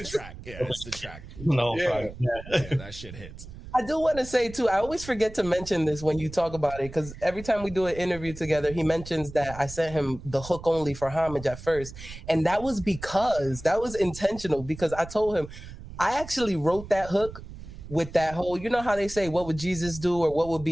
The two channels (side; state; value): right; noise; rumble, 14 dB below the sound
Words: the track. Yeah, it's the track. No, yeah, that shit hits. I do want to say too, I always forget to mention this when you talk about it, because every time we do an interview together, he mentions that I sent him the hook only for Homage at first, and that was intentional, because I told him I actually wrote that hook with that whole, you know how they say, what would Jesus do or what would